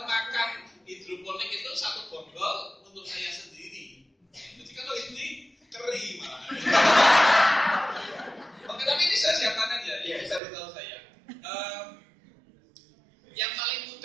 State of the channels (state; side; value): drops out; left; at 10.4 s